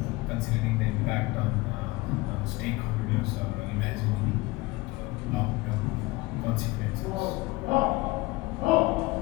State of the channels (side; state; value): right; quieter; 21.8 dB